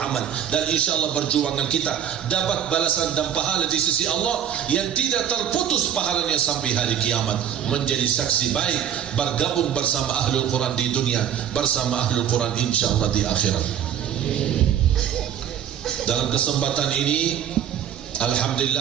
dan insyaAllah perjuangan kita dapat balasan dan pahala di sisi Allah yang tidak terputus pahalanya sampai hari kiamat, menjadi saksi baik, bergabung bersama Ahlul Quran di dunia, bersama Ahlul Quran insyaAllah di akhirat. Dalam kesempatan ini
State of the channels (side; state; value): left; quieter; 9.5 dB